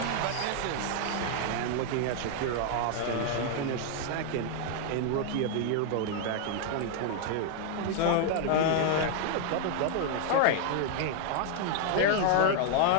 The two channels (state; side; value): different; both; correlation 0.00